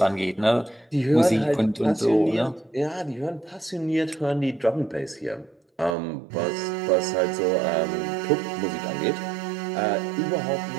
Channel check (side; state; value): left; drops out; at 6.0 s